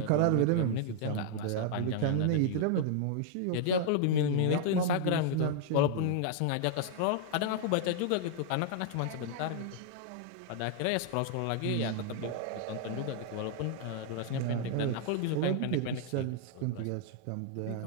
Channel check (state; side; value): different; both; correlation -0.01